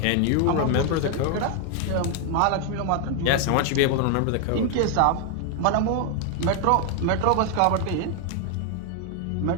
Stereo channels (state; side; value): different; both; correlation 0.00